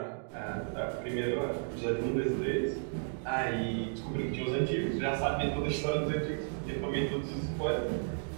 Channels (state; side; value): silent; left; digital silence